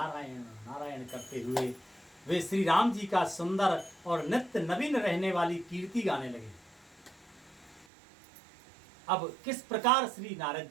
नारायण करते हुए वे श्री राम जी का सुंदर और नित्य नवीन रहने वाली कीर्ति गाने लगे। अब किस प्रकार श्री नारद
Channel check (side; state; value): left; drops out; at 7.9 s